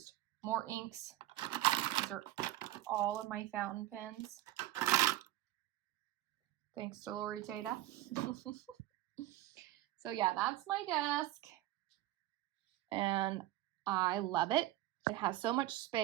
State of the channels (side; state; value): left; quieter; 15.1 dB